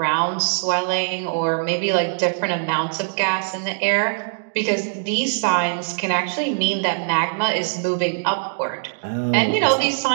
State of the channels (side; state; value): left; silent; digital silence